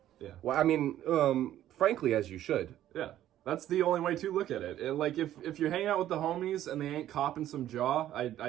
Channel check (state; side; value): quieter; left; 12.5 dB